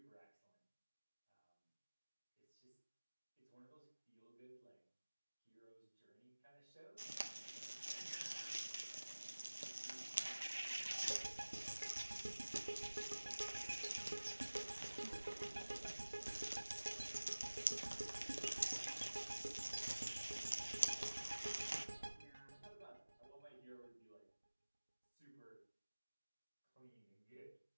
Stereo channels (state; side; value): inverted; both; correlation -1.00